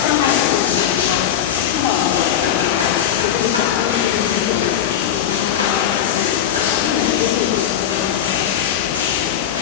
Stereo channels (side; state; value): right; quieter; 10.0 dB